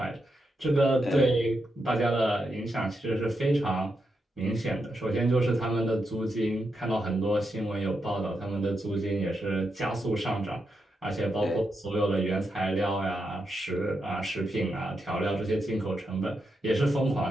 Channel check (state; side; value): normal; both; correlation 0.84